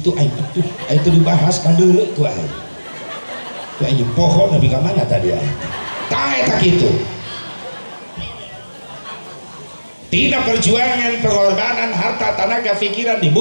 aing atuh, aya teu dibahas kandeuleu ku aing. Ku aing pohon nepi ka mana tadi aing. Tah eta kitu. tina perjuangan pengorbanan harta tenaga pikiran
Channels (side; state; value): both; inverted; correlation -1.00